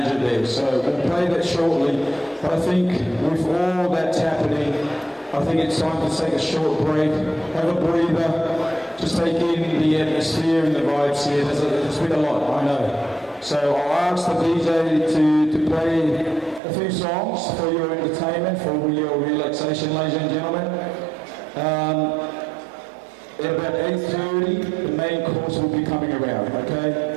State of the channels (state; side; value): drops out; left; at 16.6 s